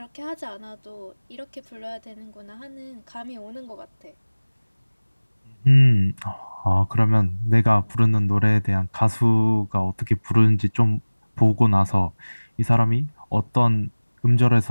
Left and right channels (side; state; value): both; inverted; correlation -1.00